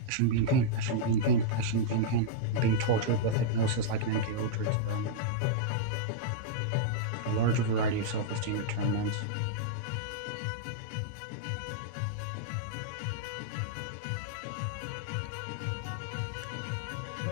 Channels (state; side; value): different; both; correlation -0.03